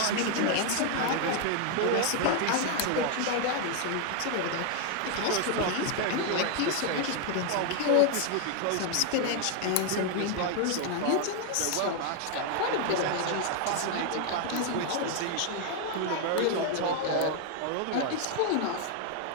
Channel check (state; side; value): different; both; correlation 0.00